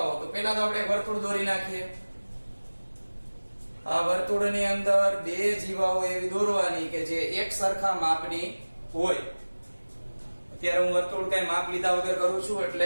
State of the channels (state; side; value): inverted; both; correlation -1.00